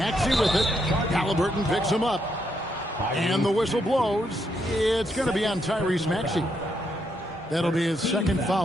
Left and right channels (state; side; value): normal; both; correlation 0.78